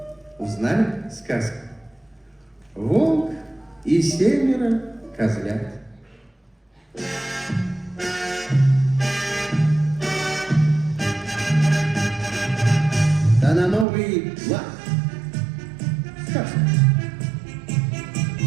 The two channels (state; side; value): drops out; left; at 13.9 s